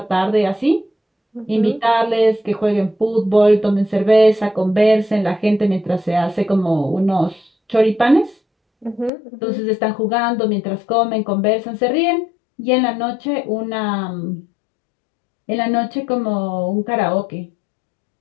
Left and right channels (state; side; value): drops out; right; at 9.1 s